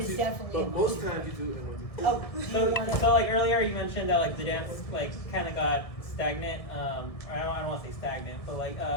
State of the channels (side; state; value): right; late; 1.6 ms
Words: is you, definitely but in most one, two, times you do it in one, two, three. oh, do you So, want to? so like earlier you mentioned that like the dance like kind of got stagnant. Or I don't want to say stagnant, but like